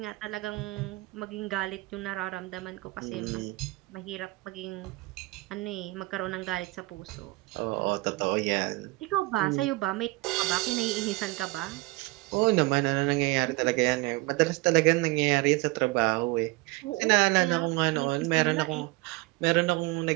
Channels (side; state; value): left; quieter; 22.7 dB